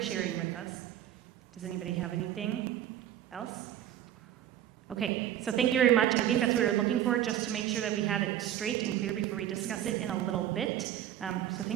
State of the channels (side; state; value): left; quieter; 11.4 dB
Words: sharing with us. Does anybody have anything else? Okay, so thank you very much. I think that's what we were looking for, just to make sure that we had it straight and clear before we discuss it in a little bit. So